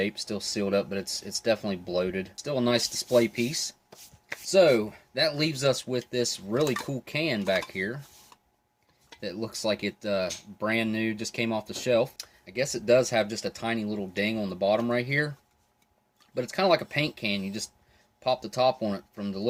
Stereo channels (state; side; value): identical; both; correlation 1.00